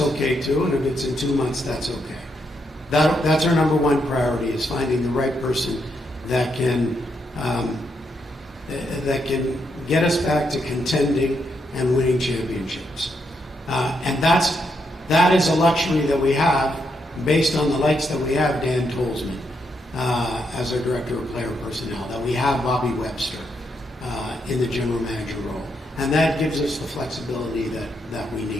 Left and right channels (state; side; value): normal; both; correlation 0.79